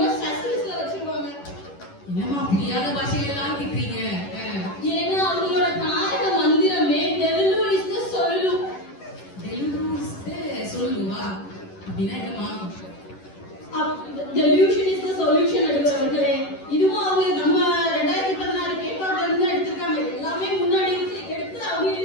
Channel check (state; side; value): late; right; 11 ms